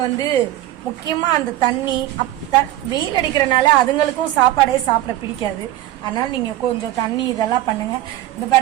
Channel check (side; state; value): left; quieter; 14.6 dB